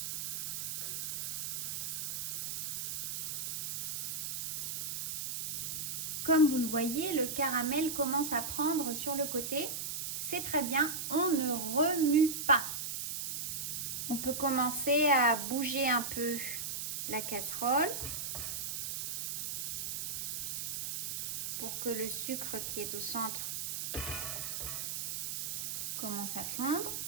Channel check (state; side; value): noise; right; hiss, 3 dB below the sound